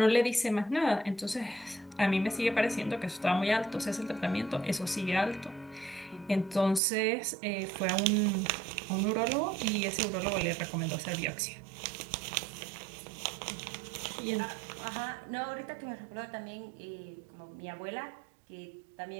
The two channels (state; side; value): drops out; left; at 6.8 s